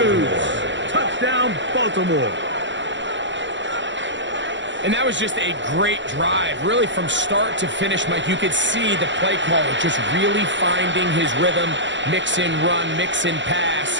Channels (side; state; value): left; late; 0.54 ms